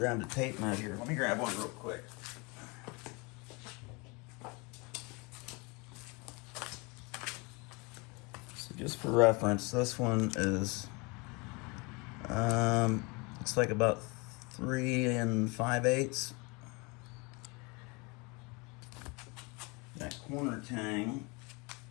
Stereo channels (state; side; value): quieter; right; 28.6 dB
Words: a tape measure. Let me grab one real quick. So just for reference, this one is it's like about 3 5/8. That corner tang,